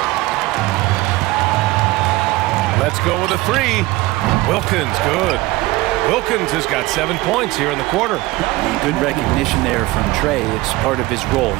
Let's go with a 3. Wilkins, good. Wilkins has got 7 points here in the quarter. Good recognition there from Trae. It's part of his role.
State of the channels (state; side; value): quieter; left; 19.7 dB